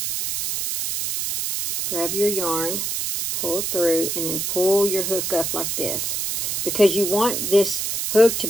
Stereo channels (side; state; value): right; noise; hiss, 1 dB below the sound